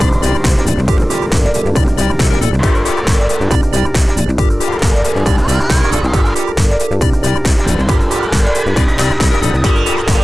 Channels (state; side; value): normal; both; correlation 0.97